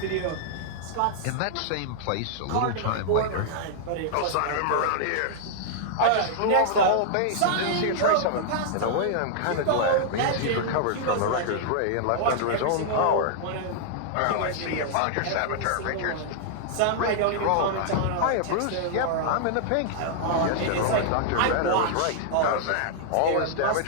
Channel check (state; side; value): different; both; correlation -0.01